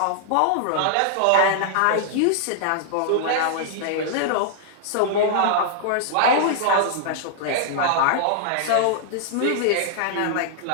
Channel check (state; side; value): different; both; correlation -0.01